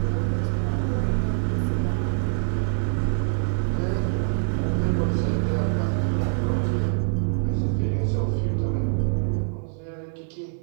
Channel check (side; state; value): left; silent; 56 dB below the other